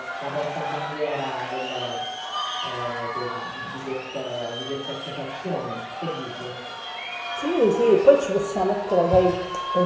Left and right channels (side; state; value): both; identical; correlation 1.00